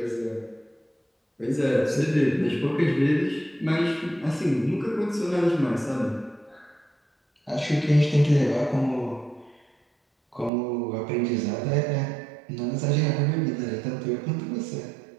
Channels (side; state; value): left; drops out; at 10.5 s